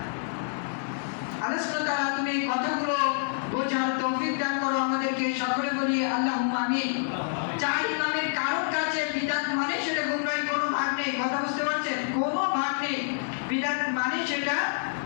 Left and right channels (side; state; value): right; silent; digital silence